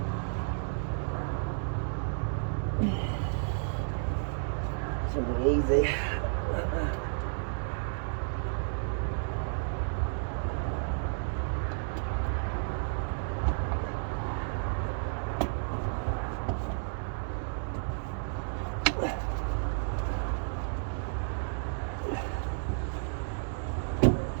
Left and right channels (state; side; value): silent; left; digital silence